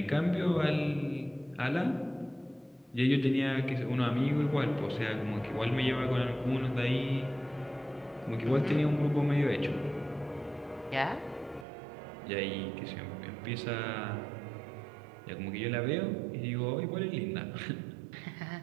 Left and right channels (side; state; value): left; drops out; at 11.7 s